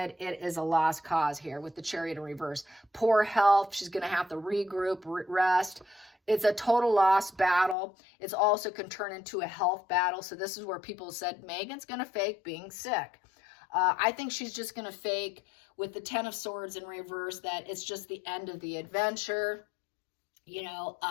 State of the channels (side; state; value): right; drops out; at 7.8 s